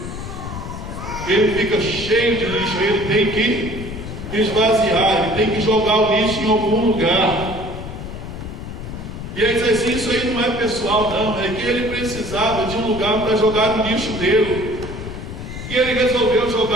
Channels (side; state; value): left; noise; rumble, 9 dB below the sound